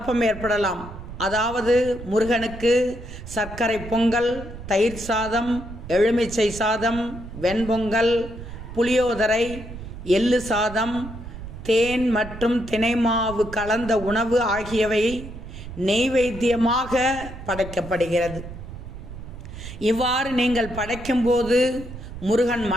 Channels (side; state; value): right; noise; rumble, 12 dB below the sound